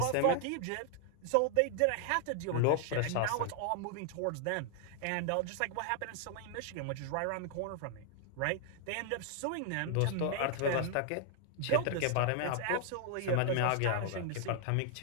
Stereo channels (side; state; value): both; different; correlation 0.00